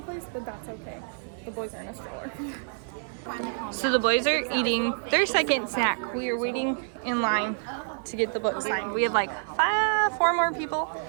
but that's okay. The boys are in a stroller. So the boys are eating their second snack. We are waiting in line to get the book signed. We have like 4 more people.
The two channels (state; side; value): silent; left; 60 dB below the other